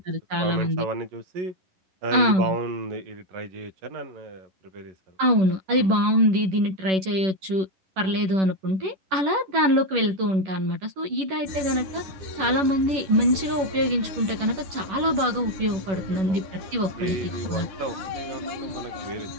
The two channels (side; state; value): left; late; 11 ms